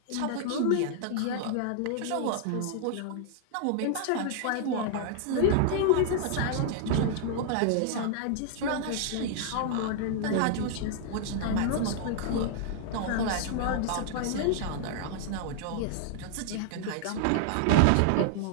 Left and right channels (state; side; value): different; both; correlation -0.01